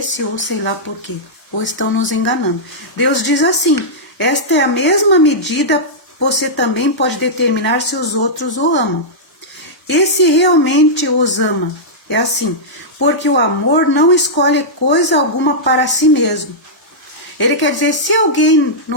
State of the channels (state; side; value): normal; both; correlation -0.11